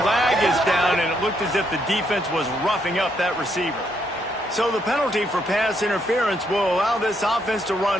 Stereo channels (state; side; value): normal; both; correlation 0.75